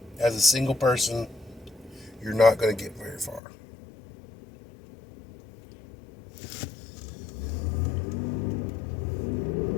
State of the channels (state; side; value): drops out; right; at 3.4 s